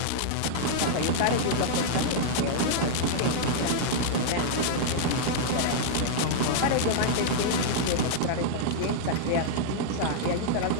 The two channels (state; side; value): different; both; correlation -0.01